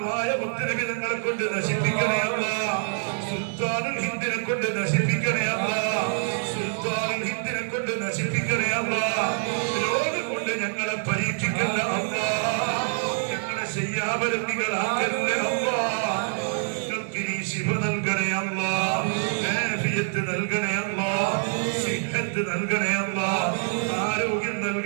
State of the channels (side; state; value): left; silent; 56 dB below the other